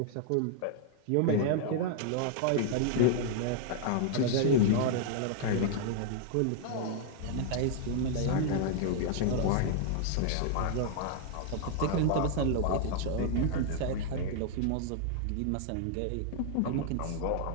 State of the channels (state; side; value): different; both; correlation 0.00